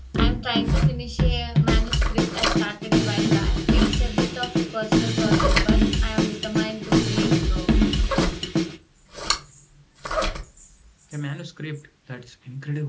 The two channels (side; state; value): both; identical; correlation 1.00